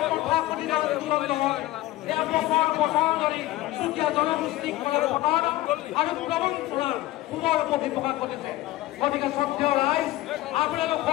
প্ৰকাশ কৰি আন্দোলন নহয় এয়া বছৰ বছৰ ধৰি চুতীয়া জনগোষ্ঠীক কৰে প্ৰতাৰণা আৰু প্ৰবঞ্চনাৰ পুনৰ প্ৰকাশ কৰিছে গতিকে শ্ৰদ্ধেয় ৰাইজ আপোনালোক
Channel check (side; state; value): right; quieter; 16.7 dB